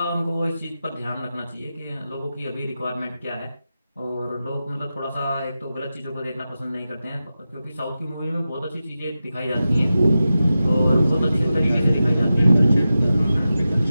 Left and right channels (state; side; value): inverted; both; correlation -0.93